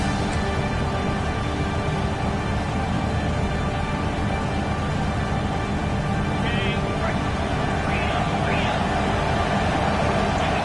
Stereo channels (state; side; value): identical; both; correlation 1.00